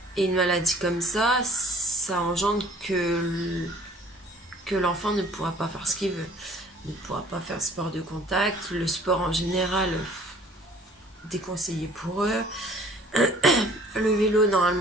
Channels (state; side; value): normal; both; correlation 0.54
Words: et une maladie comme ça, ça engendre que l'enfant ne pourra pas faire ce qu'il veut, ne pourra pas faire sport de contact, le sport en général déconseillé pour eux, le vélo